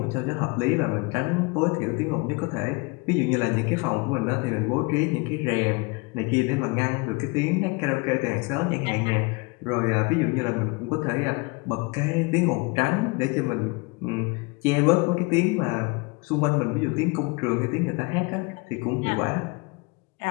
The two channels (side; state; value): right; quieter; 27.7 dB